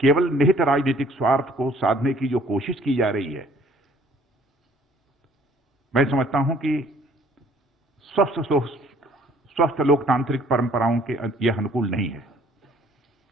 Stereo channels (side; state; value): both; normal; correlation 0.57